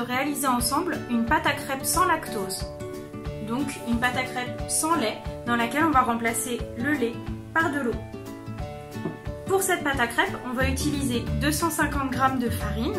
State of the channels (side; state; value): both; identical; correlation 1.00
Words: ensemble une pâte à crêpes sans lactose. Donc une pâte à crêpes sans lait dans laquelle on va remplacer le lait par de l'eau. Pour cette pâte à crêpes, on va utiliser 250 g de